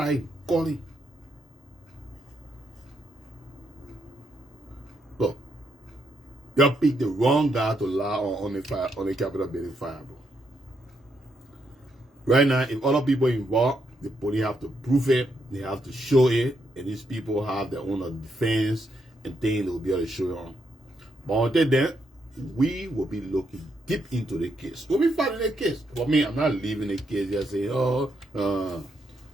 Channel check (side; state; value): both; normal; correlation 0.78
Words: calling. Look, you picked the wrong guy to lie on the fire, on the Capitol building fire, bro. Right now, if other people involved, the police have to prove it, they have to show it, and these people have their own defense and things they will be able to show you on. But until then, we will be looking deep into the case. We'll be fighting the case. For me, I'm not leaving the case just saying, we'll